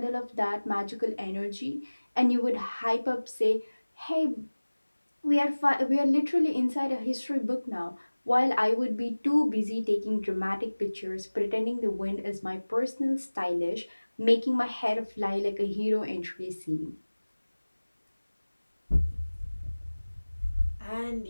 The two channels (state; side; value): inverted; both; correlation -1.00